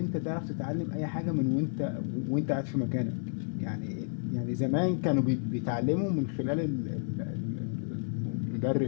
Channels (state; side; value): silent; right; 57 dB below the other